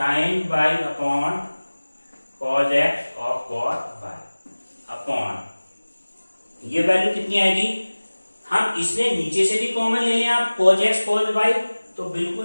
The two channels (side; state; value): both; inverted; correlation -1.00